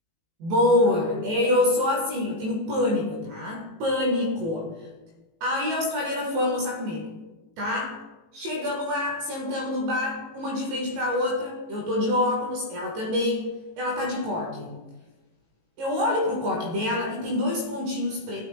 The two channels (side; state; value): left; late; 18 ms